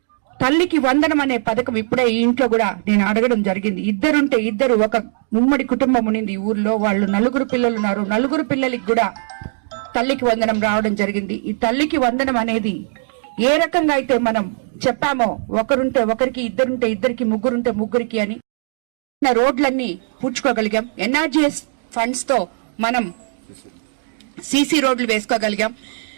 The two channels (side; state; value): left; silent; digital silence